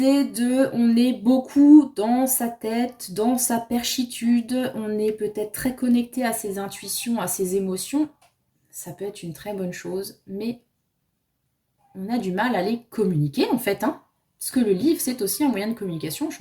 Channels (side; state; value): both; identical; correlation 1.00